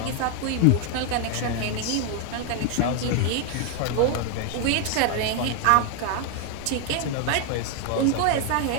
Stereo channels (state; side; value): different; both; correlation 0.00